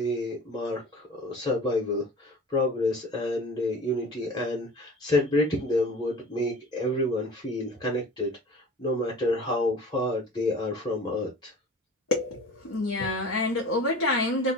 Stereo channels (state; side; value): normal; both; correlation 0.40